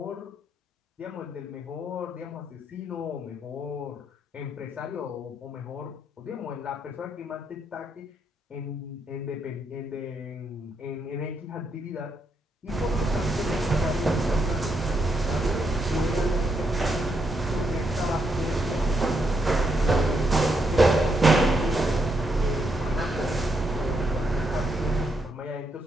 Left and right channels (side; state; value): both; normal; correlation 0.78